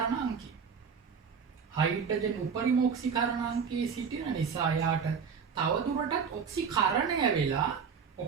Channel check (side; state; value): left; quieter; 6.3 dB